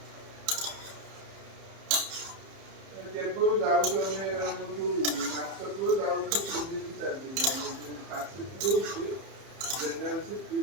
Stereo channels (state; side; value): late; left; 30 ms